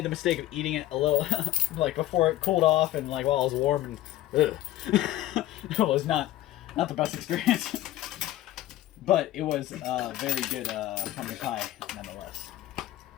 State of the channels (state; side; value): quieter; right; 14.8 dB